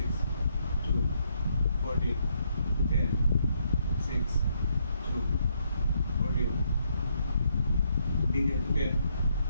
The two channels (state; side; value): inverted; both; correlation -0.74